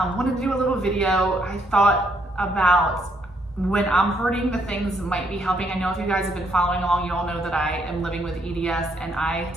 wanted to do a little video. I thought about when I'm hurting, the things might be helping. I know if you guys have been following along, you all know that I am living with EDS and I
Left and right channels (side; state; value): both; normal; correlation 0.73